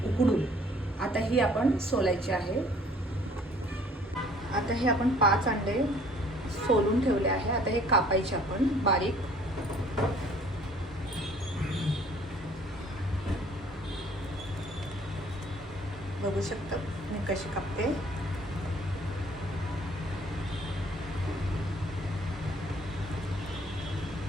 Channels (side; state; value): both; normal; correlation 0.56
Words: उकडून। आता ही आपण सोलायची आहे। आता हे आपण 5 अंडे सोलून ठेवले आहे। आता हे कापायचे आपण बारीक। बघू शकता मी कशी कापते।